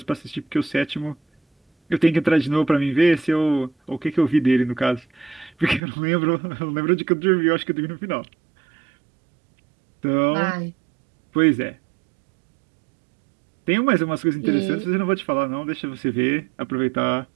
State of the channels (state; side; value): drops out; left; at 5.8 s